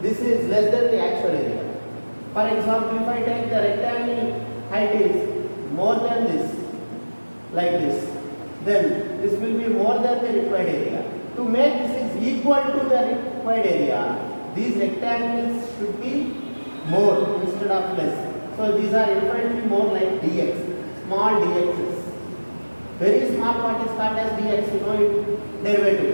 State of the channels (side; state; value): both; inverted; correlation -1.00